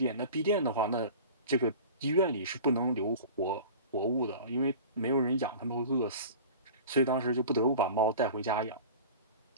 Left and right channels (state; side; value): inverted; both; correlation -0.38